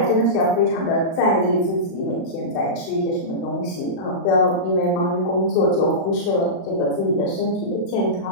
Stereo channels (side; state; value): right; late; 36 ms